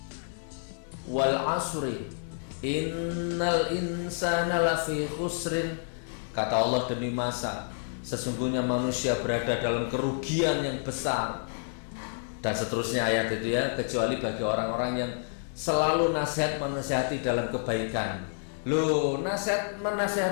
Wal asri innal insana lafi khusrin, kata Allah demi masa, sesungguhnya manusia berada dalam kerugian yang besar. Dan seterusnya ayat itu ya, kecuali bagi orang-orang yang selalu menasihati dalam kebaikan. Loh,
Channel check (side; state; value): right; silent; digital silence